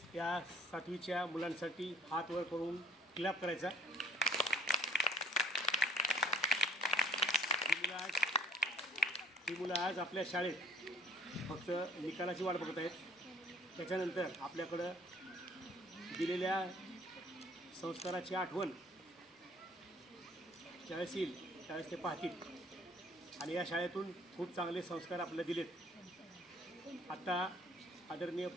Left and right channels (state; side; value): normal; both; correlation 0.56